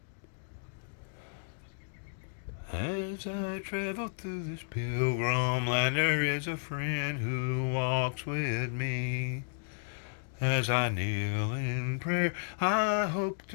As I travel through this pilgrim land, there is a friend who walks with me. As I kneel in prayer, I hope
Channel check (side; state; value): right; silent; digital silence